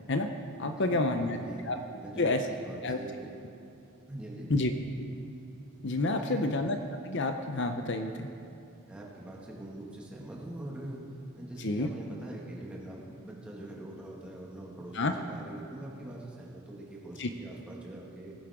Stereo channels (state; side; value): normal; both; correlation 0.26